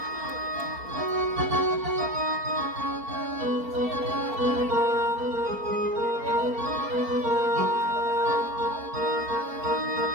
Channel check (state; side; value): late; left; 4.4 ms